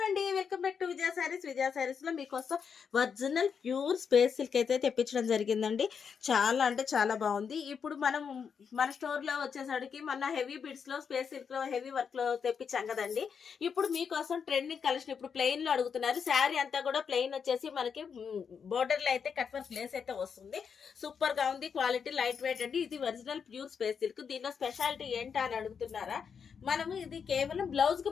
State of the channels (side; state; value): right; quieter; 6.6 dB